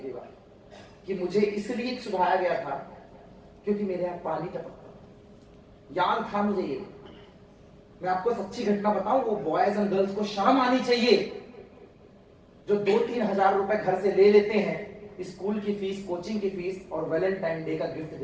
भी बार कि मुझे इसलिए सुधारा गया था क्योंकि मेरे यहां पानी टपकता। याद था मुझे ये। मैं आपको सच्ची घटना बताऊं, वो बॉयज एंड गर्ल्स को शर्म आनी चाहिए जो 2-3 हजार रुपए घर से ले लेते हैं, स्कूल की फीस, कोचिंग की फीस और वैलेंटाइन डे का गिफ्ट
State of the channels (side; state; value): both; identical; correlation 1.00